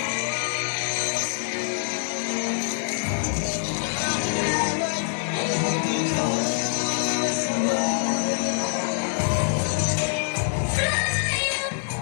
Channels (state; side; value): silent; right; digital silence